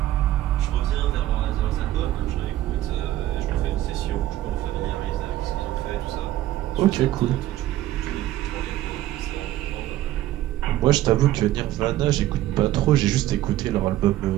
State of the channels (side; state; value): left; quieter; 14.2 dB